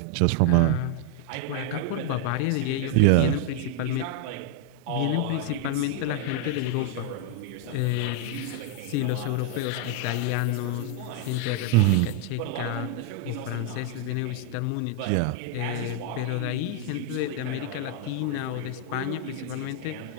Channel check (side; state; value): both; different; correlation 0.00